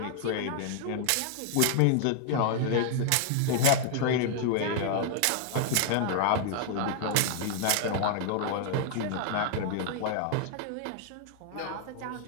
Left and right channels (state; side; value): different; both; correlation 0.00